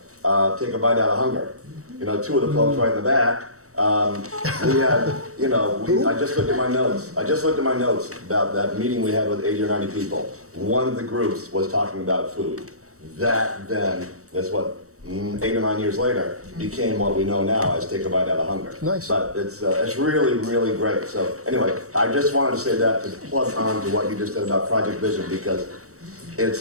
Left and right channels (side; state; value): left; late; 0.65 ms